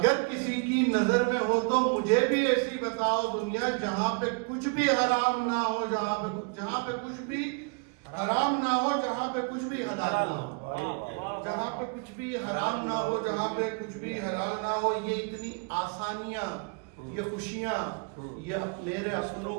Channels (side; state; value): left; quieter; 34.3 dB